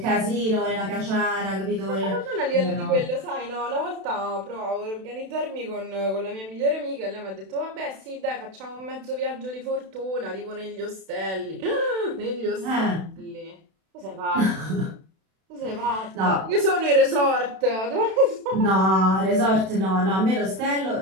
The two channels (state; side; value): late; left; 32 ms